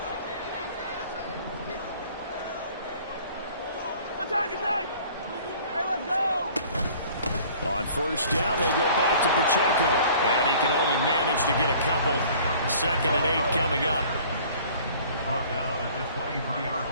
Attack! Hey, let's go! On first down, they go back to Pacheco. And he can only manage to get a couple. Second and 8 coming up. Brought down at the 23-yard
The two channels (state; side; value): inverted; both; correlation -0.51